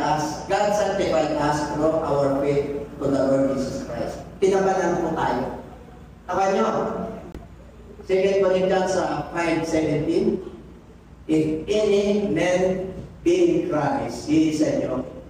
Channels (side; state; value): both; identical; correlation 1.00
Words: us. God sanctified us through our faith to the Lord Jesus Christ. Tinabanan po tayo. Taka nyo, 2 Corinthians 5:17, if any man be in Christ, he is a new